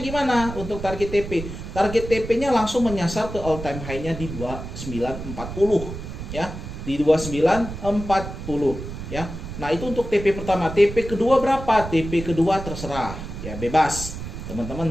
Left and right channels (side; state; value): right; noise; rumble, 9 dB below the sound